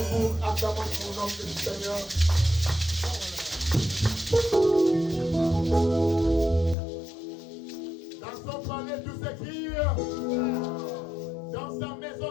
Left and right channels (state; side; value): drops out; right; at 6.8 s